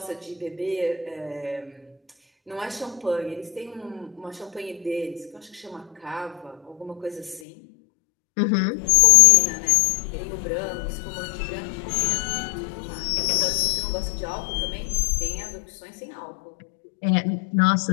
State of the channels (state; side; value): drops out; right; at 7.4 s